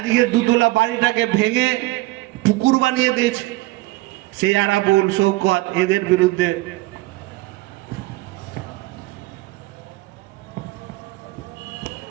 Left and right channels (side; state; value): left; quieter; 20.2 dB